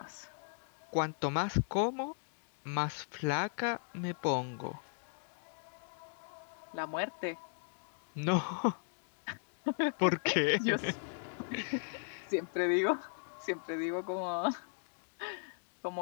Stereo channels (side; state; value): right; silent; digital silence